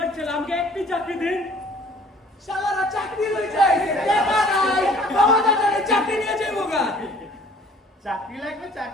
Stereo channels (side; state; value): both; normal; correlation 0.54